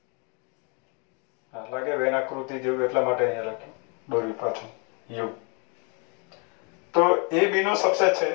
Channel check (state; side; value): quieter; right; 34.9 dB